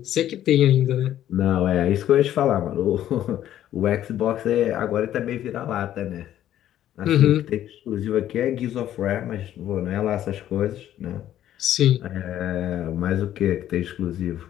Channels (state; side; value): quieter; right; 11.9 dB